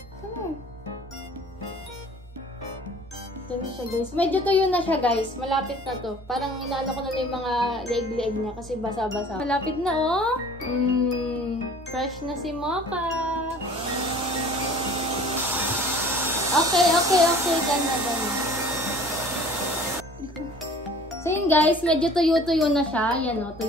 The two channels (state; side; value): normal; both; correlation 0.47